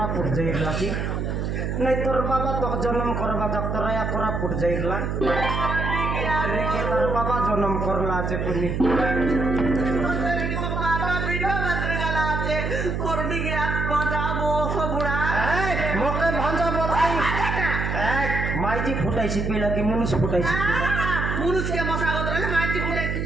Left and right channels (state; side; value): noise; right; hum, 1 dB below the sound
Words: পুট যাইলা কি নাই তোর বাবা তো জন্ম করবা তোরায়া করা পুট যাইলা রেখে তোর বাবা জন্ম করলা আছে তুমি মকে ভাঞ্জা বলাই মাইজি ফুটাইছি পিলা কি মুনুষ ফুটাইছি পিলা মুনুষকে মশাগত রইলে মাইজি ফুটাইছি